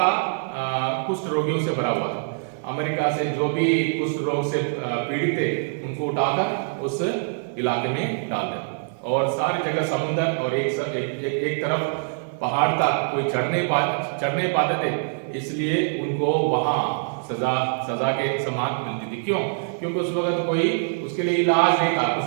कुष्ठ रोगियों से भरा हुआ था। अमेरिका से जो भी कुष्ठ रोग से पीड़ित थे उनको उठाकर उस इलाके में डाल दिया, और सारी जगह समुद्र और एक तरफ पहाड़ था, कोई चढ़ने पाते थे, इसलिए उनको वहां सजा के समान मिलती थी। क्यों? क्योंकि उस वक्त कोई उसके लिए इलाज नहीं था,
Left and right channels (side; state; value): left; silent; digital silence